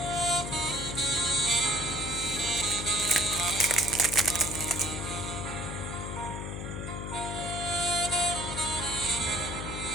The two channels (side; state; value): left; noise; hum, 6 dB below the sound